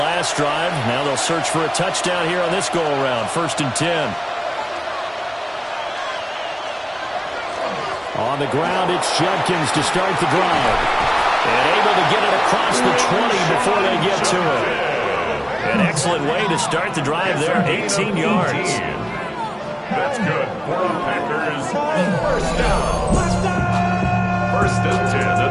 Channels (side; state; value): both; identical; correlation 1.00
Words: drive. Now they'll search for a touchdown here on this go-around. 1st and 10. On the ground, it's Judkins to start the drive. And able to get it across the 20 before they get to it. An excellent way to start the drive there, 18 yards. That's good for the Packers. 1st down. 1st and 10